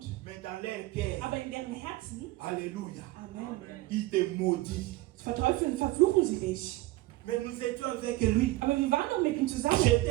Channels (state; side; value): quieter; left; 18.6 dB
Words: mais dans leur cœur, aber in deren Herzen, alléluia, Amen, ils te maudissent. verteufeln, verfluchen sie dich. Mais nous étions avec lui. Aber wir waren doch mit ihm zusammen.